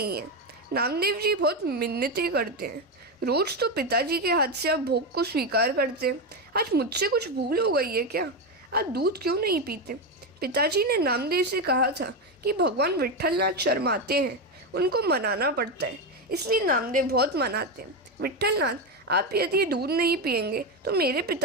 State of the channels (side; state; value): both; normal; correlation 0.12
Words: हैं। नामदेव जी बहुत मिन्नतें करते हैं। रोज तो पिताजी के हाथ से आप भोग को स्वीकार करते हैं। आज मुझसे कुछ भूल हो गई है क्या? आप दूध क्यों नहीं पीते? पिताजी ने नामदेव से कहा था कि भगवान विट्ठलनाथ शर्माते हैं, उनको मनाना पड़ता है, इसलिए नामदेव बहुत मनाते हैं। विट्ठलनाथ, आप यदि दूध नहीं पिएंगे तो मेरे